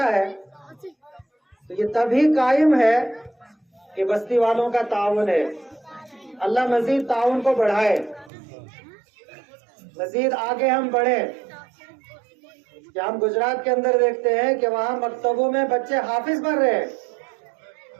ہے، تو یہ تبھی قائم ہے کہ بستی والوں کا تعاون ہے. اللہ مزید تعاون کو بڑھائے، مزید آگے ہم بڑھیں. کہ ہم گجرات کے اندر دیکھتے ہیں کہ وہاں مکتبوں میں بچے حافظ بن رہے ہیں،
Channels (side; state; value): left; drops out; at 8.3 s